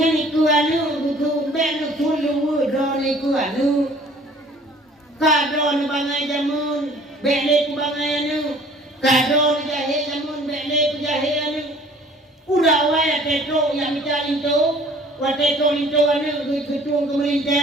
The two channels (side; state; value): both; normal; correlation 0.53